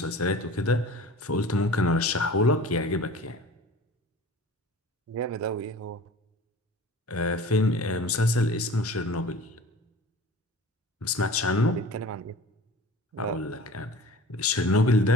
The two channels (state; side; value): normal; both; correlation 0.40